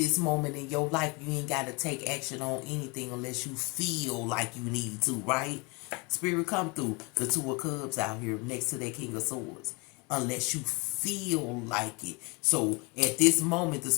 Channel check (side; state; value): right; quieter; 28.7 dB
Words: moment in your life, you ain't got to take action on anything unless you feel like you need to, right? Spirit come through. The Two of Cups out here next to that King of Swords. Unless you feel like it. So at this moment, the